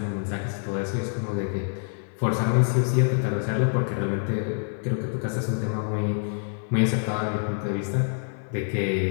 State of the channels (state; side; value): silent; right; 61 dB below the other